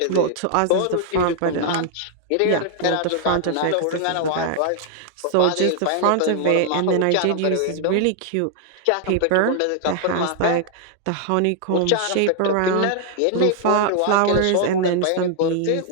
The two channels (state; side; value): different; both; correlation -0.01